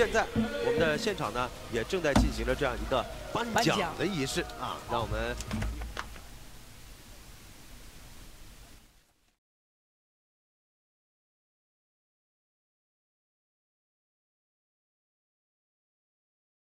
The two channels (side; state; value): both; identical; correlation 1.00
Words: 在我们的现场呢，也正在进行着这样一个颁奖的仪式啊，让我们